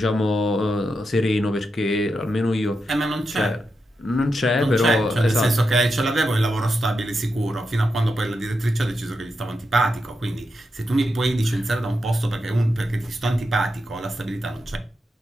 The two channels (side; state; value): both; normal; correlation 0.87